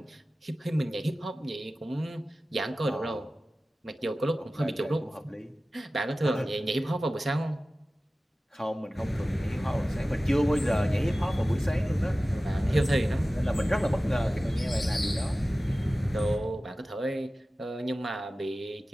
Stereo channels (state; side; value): normal; both; correlation 0.96